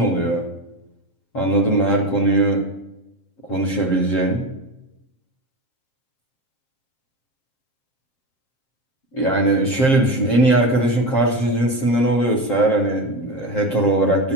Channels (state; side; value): late; right; 7.6 ms